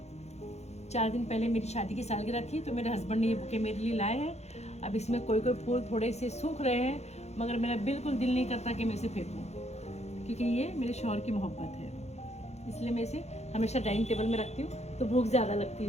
4 दिन पहले मेरी शादी की सालगिरह थी, तो मेरे हस्बैंड ने ये बुके मेरे लिए लाए हैं। अब इसमें कोई फूल थोड़े से सूख रहे हैं, मगर मेरा बिल्कुल दिल नहीं करता कि मैं इसे फेंकूं, क्योंकि ये मेरे शौहर की मोहब्बत है। इसलिए मैं इसे हमेशा डाइनिंग टेबल में रखती हूँ, तो भूख ज़्यादा लगती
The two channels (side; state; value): right; late; 0.32 ms